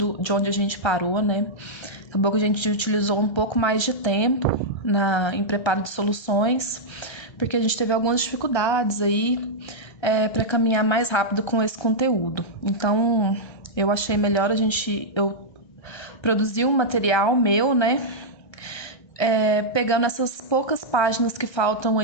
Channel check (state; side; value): late; right; 1.3 ms